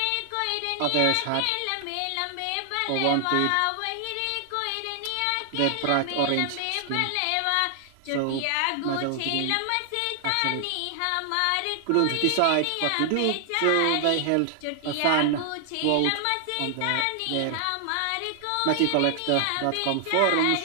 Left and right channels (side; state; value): both; different; correlation 0.00